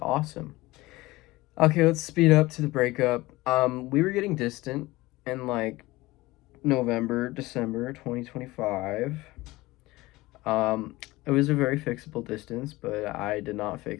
Okay, let's speed up to the breakup. We were getting distant in like November, December 2025. It was a very fixable distance, but I did not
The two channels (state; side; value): quieter; right; 19.8 dB